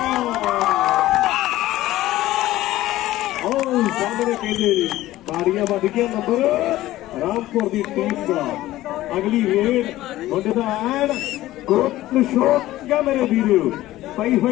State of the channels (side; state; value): right; quieter; 15.8 dB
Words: सामने कहते बाड़ियां बढ़ गया नंबर रामपुर की टीम का अगली रेड मुंडे का एन ग्रुप शोक क्या मेरे वीरो पई